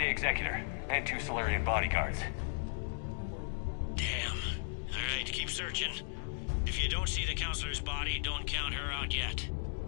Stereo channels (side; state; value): right; silent; digital silence